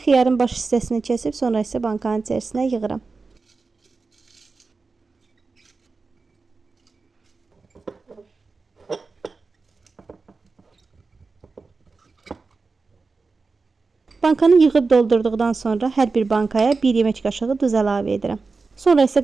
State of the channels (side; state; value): left; quieter; 4.2 dB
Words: baş hissəsini kəsib sonra isə bankanın içərisinə yığıram. Bankanı yığıb doldurduqdan sonra hər bir bankaya 1 yemək qaşığı duz əlavə edirəm. Sonra isə